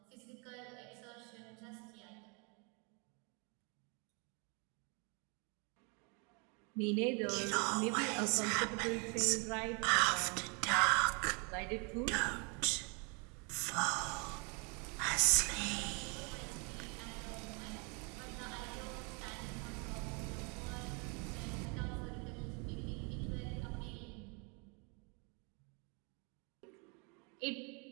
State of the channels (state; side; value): quieter; left; 33.3 dB